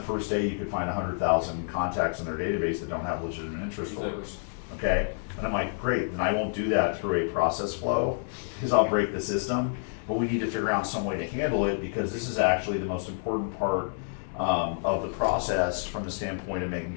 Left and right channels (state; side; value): silent; right; 58 dB below the other